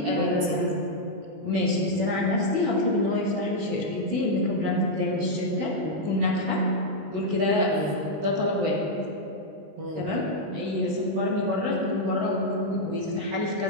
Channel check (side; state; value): left; late; 19 ms